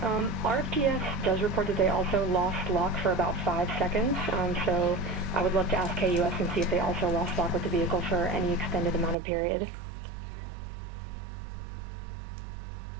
RFTS does report that they also lost lock for about 5 seconds, so I would love to ask KUS and see if they also lost lock with the vehicle for any extended amount of period.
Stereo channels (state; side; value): drops out; left; at 9.2 s